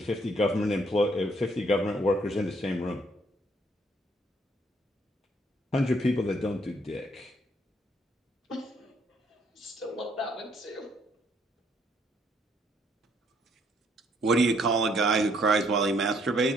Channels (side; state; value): both; normal; correlation 0.67